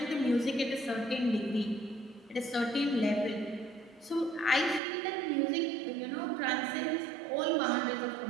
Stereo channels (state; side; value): drops out; left; at 4.8 s